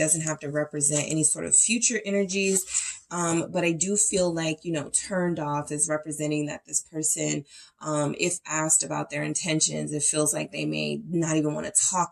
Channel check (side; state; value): both; identical; correlation 1.00